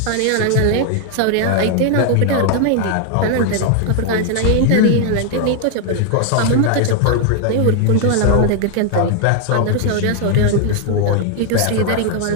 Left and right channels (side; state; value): both; different; correlation 0.00